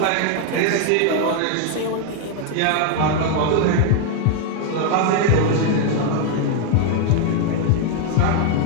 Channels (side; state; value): both; different; correlation 0.00